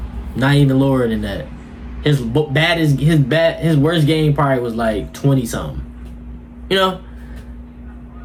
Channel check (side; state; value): both; identical; correlation 1.00